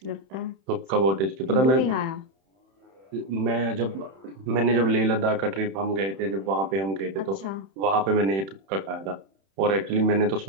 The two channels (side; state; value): left; late; 31 ms